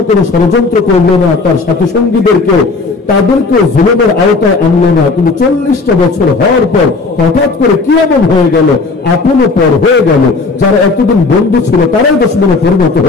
কোন ষড়যন্ত্র করল না, তার সাথী সঙ্গীদেরকেও তাদেরকেও জুলুমের আওতায় আনলো না। কিন্তু 40টা বছর হওয়ার পর হঠাৎ করে কি এমন হয়ে গেল, আপনও পর হয়ে গেল, যারা এতদিন বন্ধু ছিল তারাই দুশমনে পরিণত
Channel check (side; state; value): right; quieter; 3.9 dB